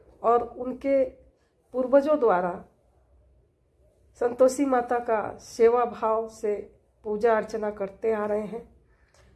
और उनके पूर्वजों द्वारा संतोषी माता का सेवा भाव से पूजा अर्चना करते आ रहे हैं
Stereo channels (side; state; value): both; identical; correlation 1.00